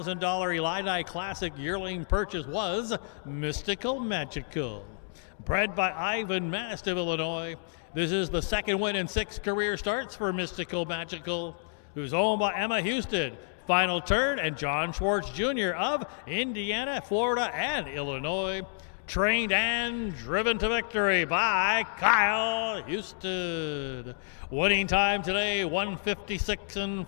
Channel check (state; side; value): silent; right; digital silence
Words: Elidi Classic yearling purchase was Mystical Magical. Bred by Ivan Mast of Illinois, this is the second win in 6 career starts for Mystical Magical, who's owned by Emma Houston, Final Turn, and John Schwartz Jr. of Indiana, Florida, and Illinois. Trained and driven to victory by Kyle Houston. Winning time today, 156 and